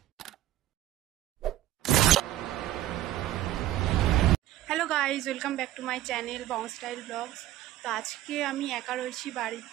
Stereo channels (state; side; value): quieter; left; 13.7 dB